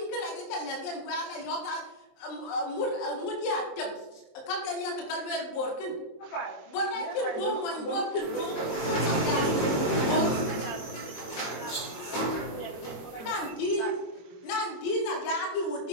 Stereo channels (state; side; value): late; right; 23 ms